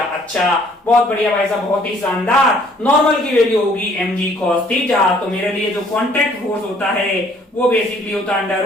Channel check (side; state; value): both; normal; correlation 0.60